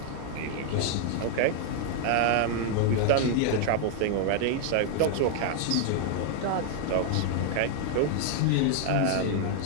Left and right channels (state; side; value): different; both; correlation 0.00